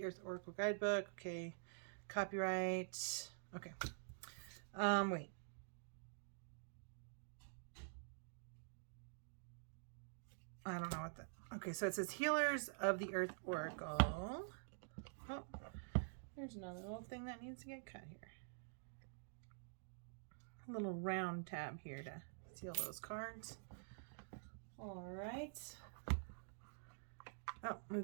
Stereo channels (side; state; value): left; silent; digital silence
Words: Earth Oracle Guidebook. Okay. Copyright. Okay. Wait. I don't know what that. Okay, so it says Healers of the Earth Oracle. Oh, there's another little thing that needs to get cut here. A little round tab here to seal those cards. All right. Oh, we've